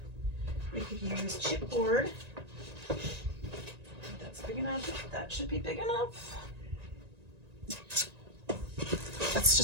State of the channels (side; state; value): left; late; 1.9 ms